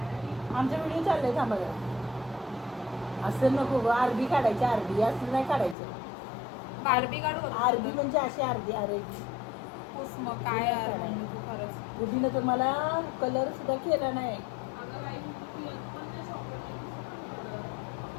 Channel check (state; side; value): drops out; right; at 5.8 s